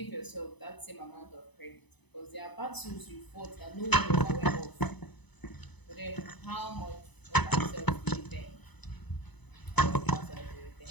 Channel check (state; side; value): late; right; 0.99 ms